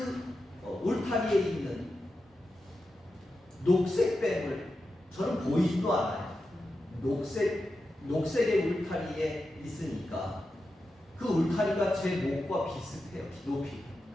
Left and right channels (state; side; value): normal; both; correlation 0.90